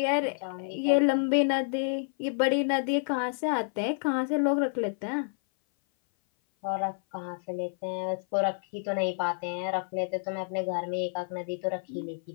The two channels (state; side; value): silent; right; 57 dB below the other